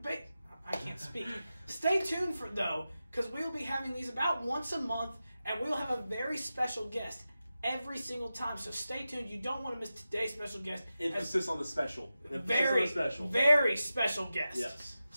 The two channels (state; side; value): inverted; both; correlation -0.92